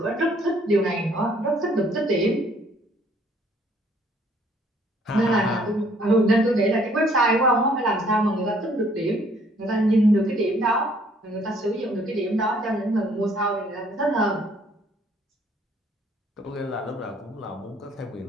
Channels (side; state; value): both; normal; correlation 0.62